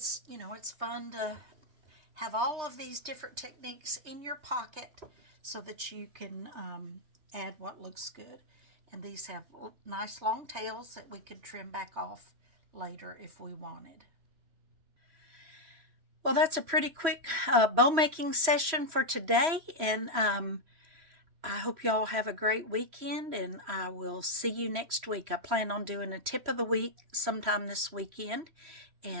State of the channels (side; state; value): left; late; 3.1 ms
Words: fun to have all of these different techniques in your pocket so that you can add what looks good. And these have nice long tails that we could trim back off later if we wanted. Well, that's a pretty quick bow making session for today, and I hope y'all have a great weekend, and I will see you next week. I plan on doing a tip of the week sometime this weekend,